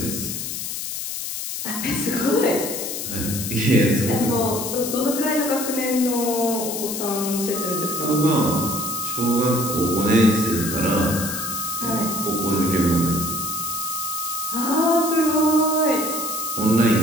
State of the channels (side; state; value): left; noise; hiss, 5 dB below the sound